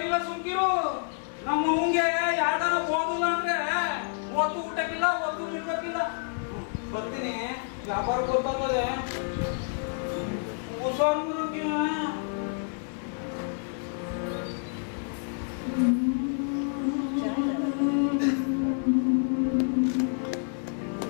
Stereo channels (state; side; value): silent; right; 59 dB below the other